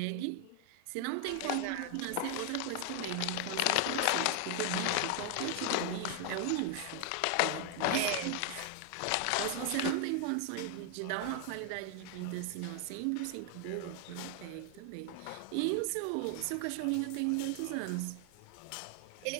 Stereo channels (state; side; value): different; both; correlation 0.00